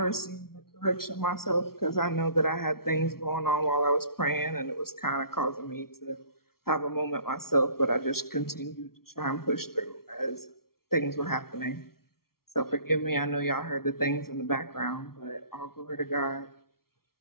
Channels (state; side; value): late; right; 0.94 ms